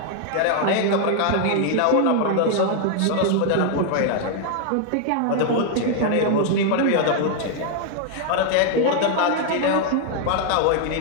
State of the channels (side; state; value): both; different; correlation 0.00